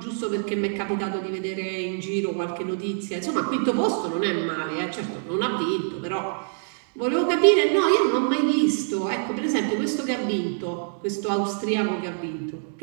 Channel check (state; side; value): silent; left; digital silence